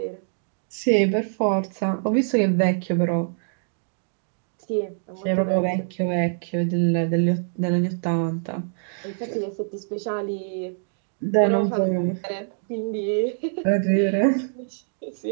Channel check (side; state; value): left; silent; digital silence